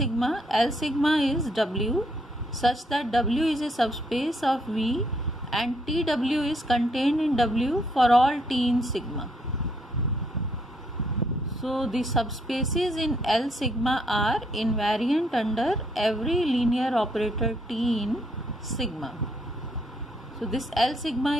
L sigma is W such that W is a subspace of V and TW is contained in W for all T in sigma. So the subspaces in L sigma are invariant under every linear operator T in sigma. So this L sigma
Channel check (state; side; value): normal; both; correlation 0.72